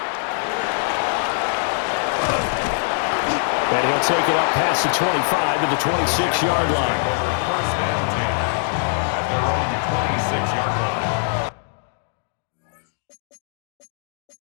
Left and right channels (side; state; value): right; silent; digital silence